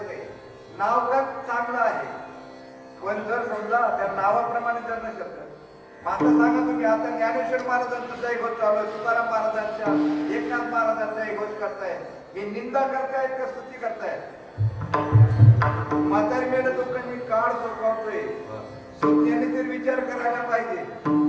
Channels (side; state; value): both; identical; correlation 1.00